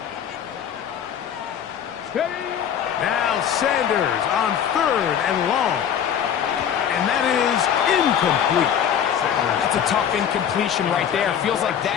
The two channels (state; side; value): quieter; right; 8.8 dB